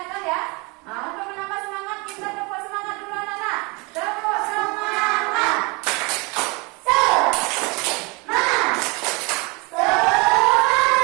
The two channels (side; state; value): left; quieter; 28.4 dB